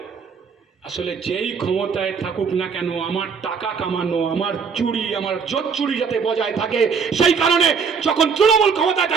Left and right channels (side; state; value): left; quieter; 5.9 dB